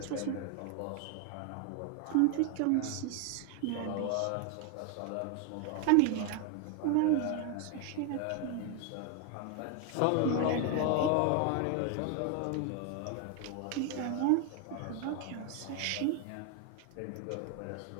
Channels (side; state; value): both; different; correlation 0.01